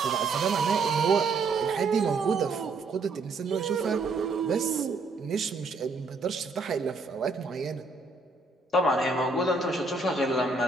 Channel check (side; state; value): left; quieter; 3.7 dB